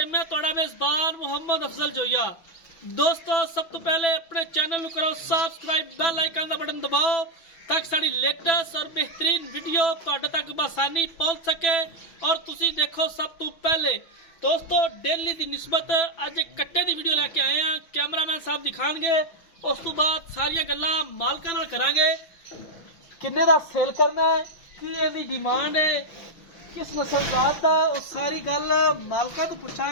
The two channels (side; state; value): right; late; 6.0 ms